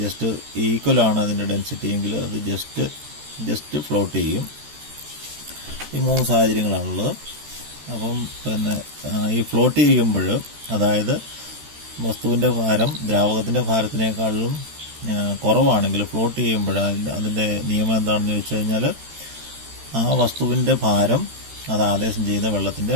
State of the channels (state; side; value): late; left; 13 ms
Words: ഈക്വലാണ് അതിൻ്റെ ഡെൻസിറ്റി എങ്കിൽ അത് ജസ്റ്റ് ഫ്ലോട്ട് ചെയ്യും. ഈ 3 സാഹചര്യങ്ങളാണുള്ളത്. അപ്പം ഈ ഫ്ലോട്ട് ചെയ്യുമ്പോൾ, അതായത് വസ്തുവിൻ്റെ ഭാരം ദ്രാവകത്തിൻ്റെ ഭാരത്തിനേക്കാളും കുറവാണെങ്കിൽ ഫ്ലോട്ട് ചെയ്യുമ്പോൾ അതിൻ്റെ നിയമം എന്താണെന്ന് ചോദിച്ചു കഴിഞ്ഞാൽ, ആ വസ്തുവിൻ്റെ ഭാരം അത് ആദേശം ചെയ്യുന്ന വെള്ളത്തിൻ്റെ